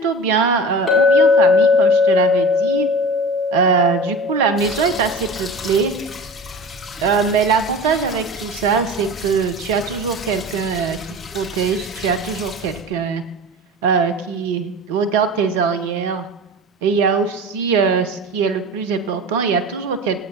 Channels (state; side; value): normal; both; correlation 0.34